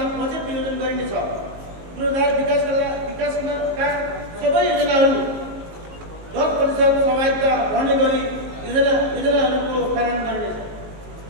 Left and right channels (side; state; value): left; late; 19 ms